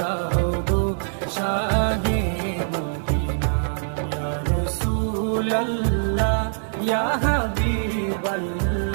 গো শাহে মদিনা। ইয়া রাসূলাল্লাহ ইয়া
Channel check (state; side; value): silent; left; digital silence